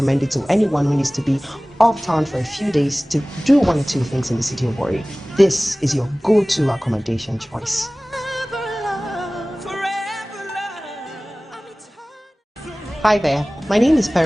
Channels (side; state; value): both; normal; correlation 0.98